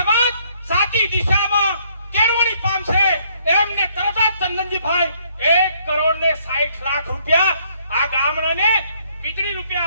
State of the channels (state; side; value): inverted; both; correlation -0.67